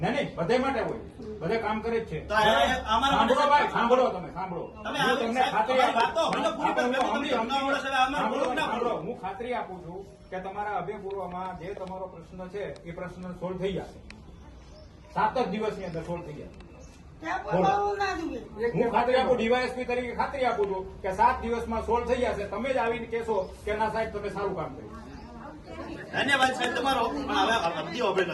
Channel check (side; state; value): both; identical; correlation 1.00